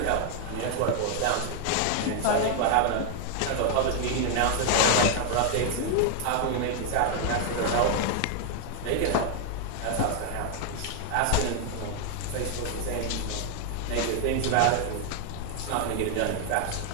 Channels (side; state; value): both; different; correlation 0.00